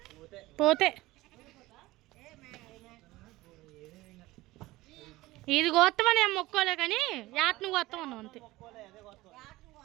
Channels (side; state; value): left; quieter; 18.9 dB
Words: పోతే ఇది గోత్తమని ఏం మొక్కోలే కానీ యాట్ను గోత్తమన్నాం అంతే.